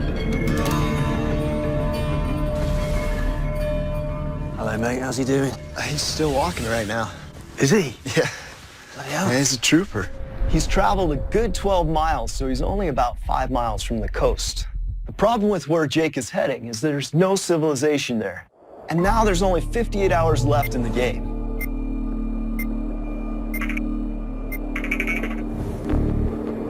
Hello, mate. How's he doing? He's still walking right now. Is he? Yeah. Bloody hell. He's a trooper. He's traveled a good 12 miles, so he's only about 5 miles from the coast. The problem with where Jake is heading is that there's no civilization there. And now there's only 58 hours left in the game.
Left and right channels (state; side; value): identical; both; correlation 1.00